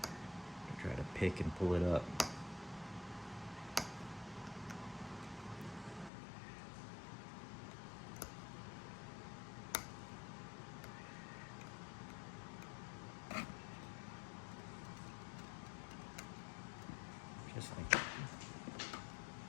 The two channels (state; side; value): drops out; right; at 6.1 s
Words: to try to pick and pull it up. Just like that.